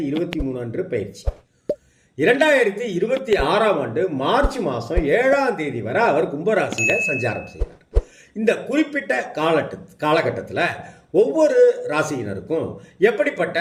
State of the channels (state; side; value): identical; both; correlation 1.00